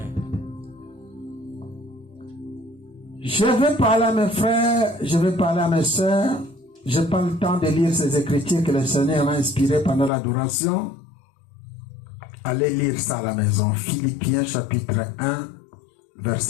Je vais parler à mes frères, je vais parler à mes soeurs. Je n'ai pas le temps de lire ces écritures que le Seigneur m'a inspirées pendant l'adoration. Allez lire ça à la maison. Philippiens chapitre 1,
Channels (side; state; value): right; drops out; at 10.1 s